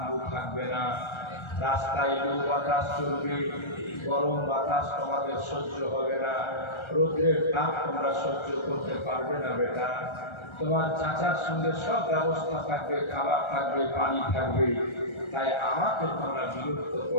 থাকবে না, রাস্তায় লু বাতাস চলবে, গরম বাতাস তোমাদের সহ্য হবে না, রোদ্রের তাপ তোমরা সহ্য করতে পারবে না বেটা। তোমার চাচার সঙ্গে সব ব্যবস্থা থাকবে, খাবার থাকবে, পানি থাকবে, তাই আমাকে তোমরা বিরক্ত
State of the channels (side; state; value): right; late; 1.3 ms